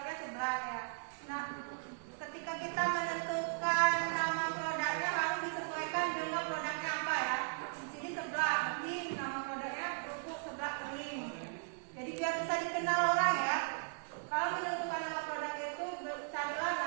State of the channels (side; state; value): left; silent; digital silence